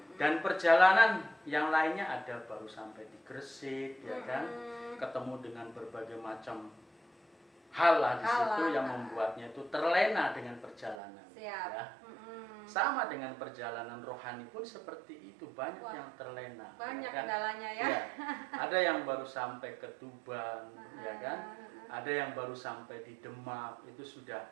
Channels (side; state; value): left; drops out; at 11.0 s